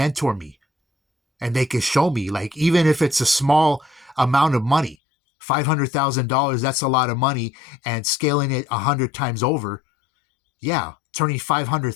me and they can show me, like, even if it's a small amount of money, $500,000, that's a lot of money, and scaling it 100 times over. Yeah, turning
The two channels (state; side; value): drops out; right; at 5.0 s